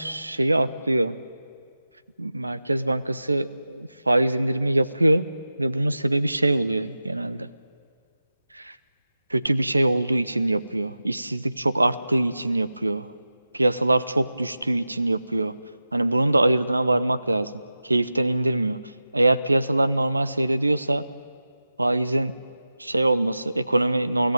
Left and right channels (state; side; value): inverted; both; correlation -0.94